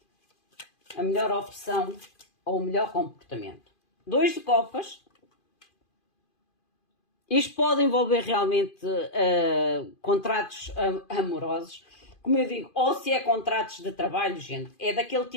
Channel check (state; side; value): late; right; 2.5 ms